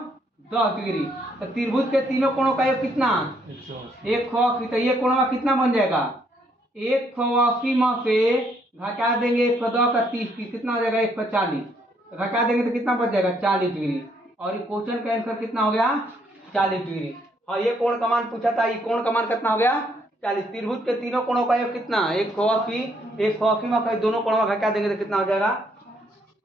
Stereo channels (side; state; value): both; normal; correlation 0.70